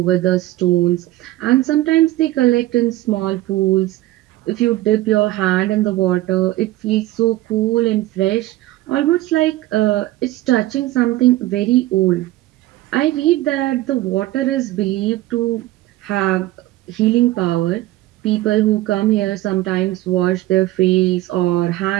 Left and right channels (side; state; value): left; quieter; 16.5 dB